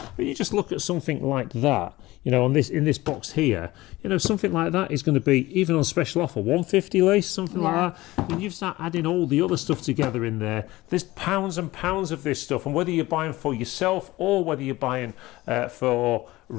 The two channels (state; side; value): quieter; right; 18.7 dB